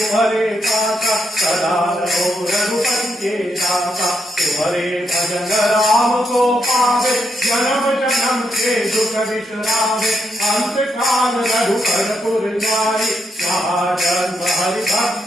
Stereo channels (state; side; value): normal; both; correlation 0.79